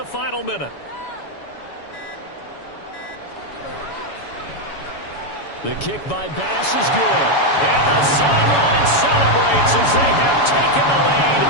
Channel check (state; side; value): late; right; 7.1 ms